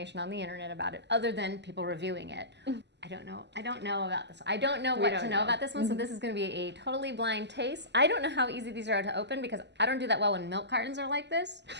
on the internet about it other than people reviewing it. I don't know about this. I don't know what to know about this one, so this is going to be a totally blind taste. I don't know how easy these are to open because I don't do that well when milk cartons are like this.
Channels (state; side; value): late; left; 0.50 ms